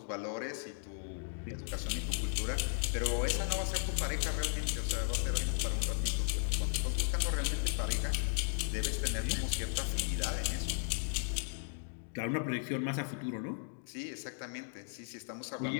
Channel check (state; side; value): silent; right; digital silence